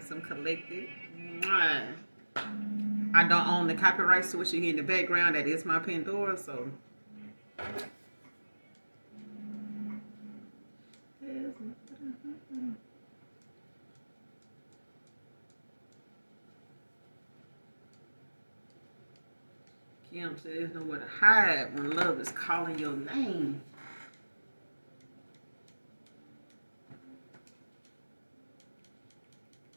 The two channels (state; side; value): inverted; both; correlation -1.00